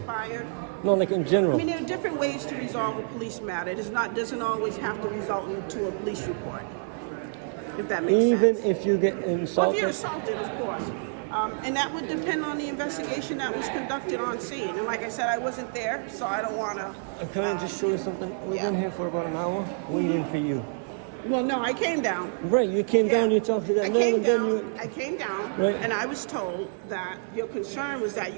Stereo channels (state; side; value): silent; left; 57 dB below the other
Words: No, like in general. I mean, there are different ways to resolve a police matter. It doesn't always have to result into a police report, if that makes sense. Even if you get insulted? Well, if you're assaulted, of course. And that would depend on the investigation that was conducted on scene. And like I said, I wasn't there, so I don't want to... Can I just show you something? We've been here for about an hour waiting for you. Well, no, I came down. Right, you came down, you talked to that man, and then you... I came down, Right. and I was told that your concern was that